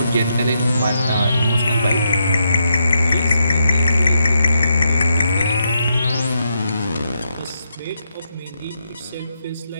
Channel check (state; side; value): inverted; both; correlation -0.81